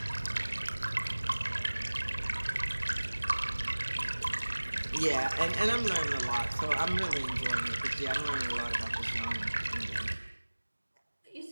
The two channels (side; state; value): both; inverted; correlation -1.00